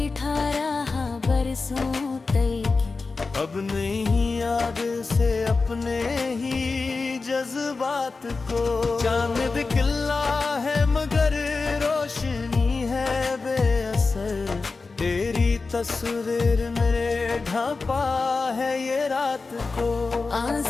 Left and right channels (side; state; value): right; quieter; 4.1 dB